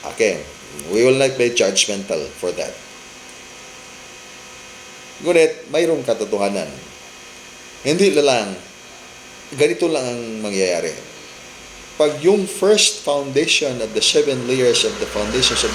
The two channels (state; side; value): identical; both; correlation 1.00